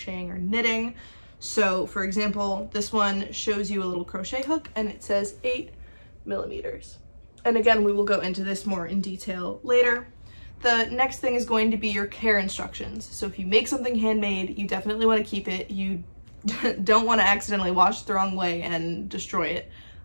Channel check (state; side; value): inverted; both; correlation -1.00